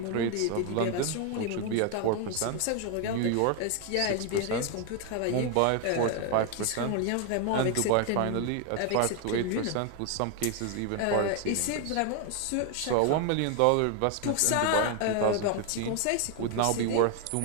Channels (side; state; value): both; different; correlation 0.01